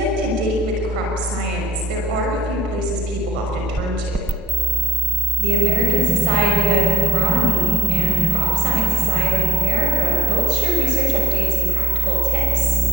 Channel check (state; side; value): normal; both; correlation 0.56